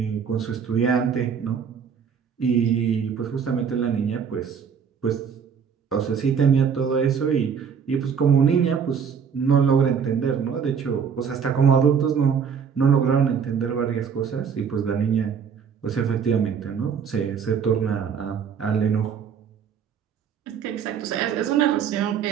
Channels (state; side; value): quieter; left; 7.0 dB